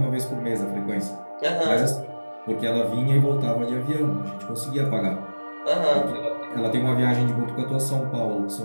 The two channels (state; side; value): inverted; both; correlation -1.00